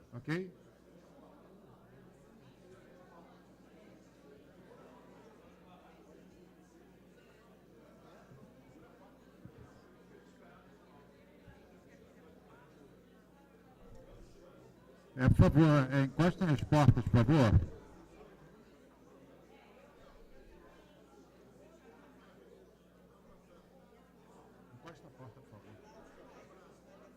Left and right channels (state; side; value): identical; both; correlation 1.00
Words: Ok? Por favor, encosta nas portas, por favor. Encosta a porta, por favor.